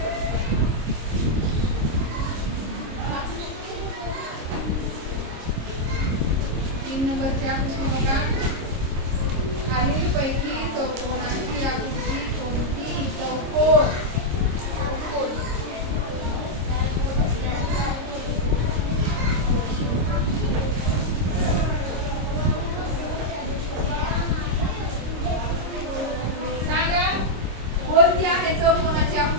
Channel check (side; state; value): left; late; 26 ms